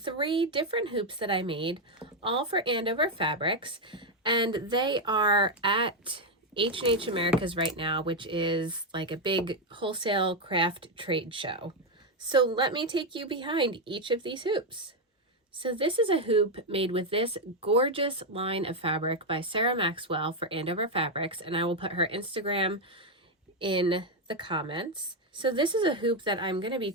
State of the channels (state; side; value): normal; both; correlation 0.04